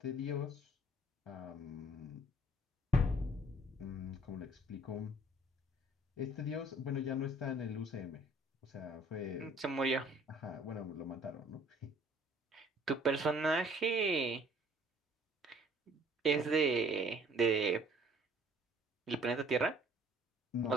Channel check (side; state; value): both; normal; correlation 0.57